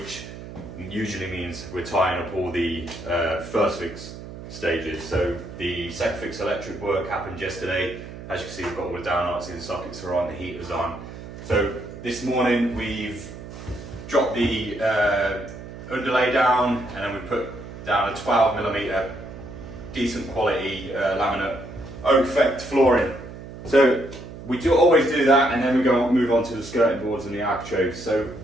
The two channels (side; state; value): right; noise; hum, 13 dB below the sound